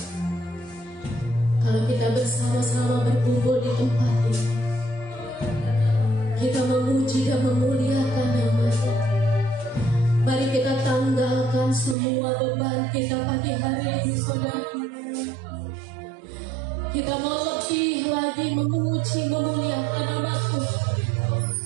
Kalau kita bersama-sama berkumpul di tempat ini, kita memuji dan memuliakan nama-Nya. Mari kita tanggalkan semua beban kita pagi hari ini, saudara. Kita mau lebih lagi memuji, memuliakan nama Tuhan.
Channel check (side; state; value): left; drops out; at 12.0 s